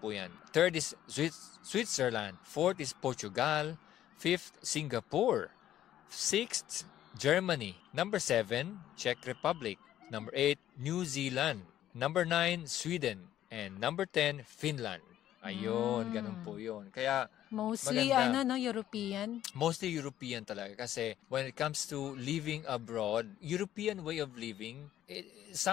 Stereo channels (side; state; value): right; quieter; 12.1 dB